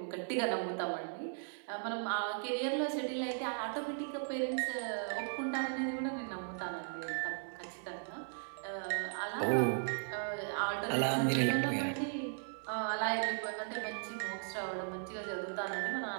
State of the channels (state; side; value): silent; left; 53 dB below the other